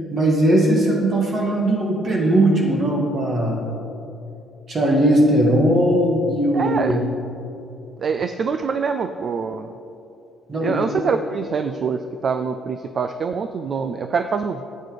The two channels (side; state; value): both; normal; correlation 0.68